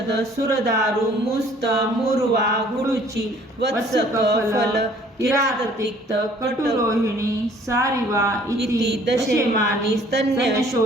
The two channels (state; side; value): normal; both; correlation 0.56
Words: सुरदारु मुस्त मूर्वा गुडुची वत्सक फल किराततिक्त कटुरोहिणी सारिवा इति दशेमानि